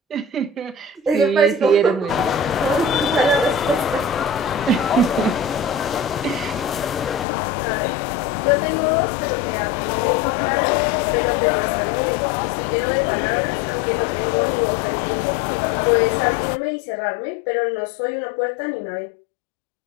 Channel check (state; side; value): drops out; right; at 7.2 s